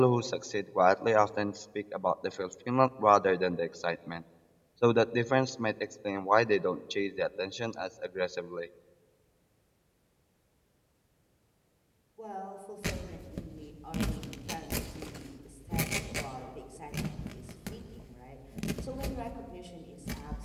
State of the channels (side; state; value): both; identical; correlation 1.00